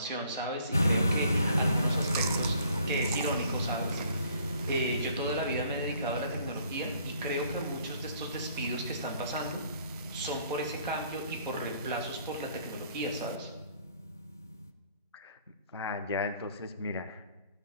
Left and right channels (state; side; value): inverted; both; correlation -0.61